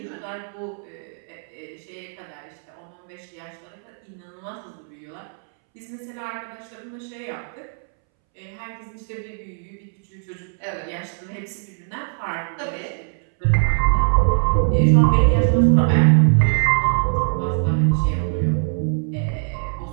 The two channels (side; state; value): left; silent; 64 dB below the other